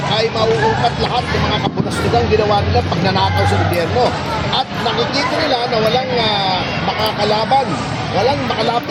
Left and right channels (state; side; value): identical; both; correlation 1.00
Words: ay mauungkat lahat ng mga kapunastugang ginawa nila pagnanakaw sa gobyerno. At nakikita nila na walang makakalaban, walang